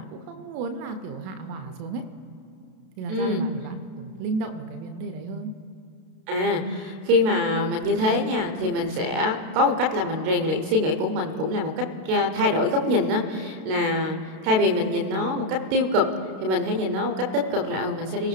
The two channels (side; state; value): left; late; 32 ms